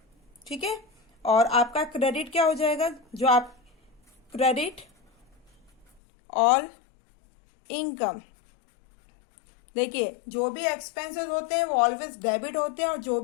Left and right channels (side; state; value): right; drops out; at 5.9 s